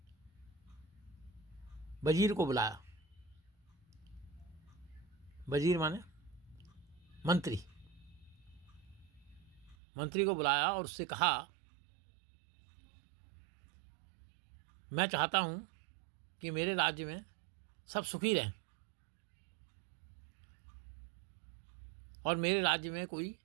वजीर को बुलाया। वजीर माने मंत्री। मंत्री को बुलाया और उससे कहा, मैं चाहता हूं कि मेरे राज्य में सब सुखी रहें और मेरे राज्य में कोई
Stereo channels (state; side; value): drops out; left; at 9.8 s